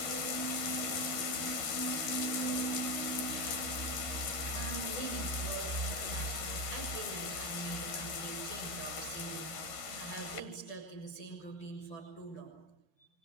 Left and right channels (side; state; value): right; late; 13 ms